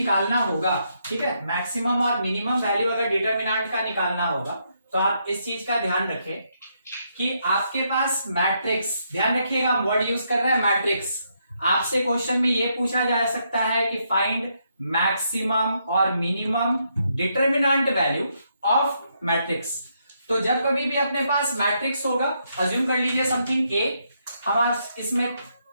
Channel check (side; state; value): both; inverted; correlation -0.77